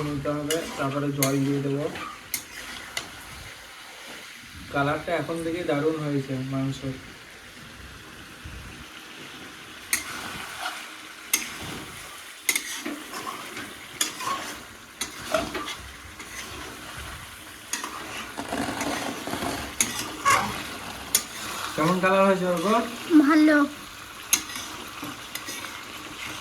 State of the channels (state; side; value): identical; both; correlation 1.00